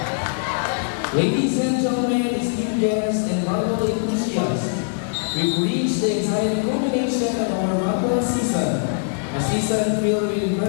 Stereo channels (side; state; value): right; silent; digital silence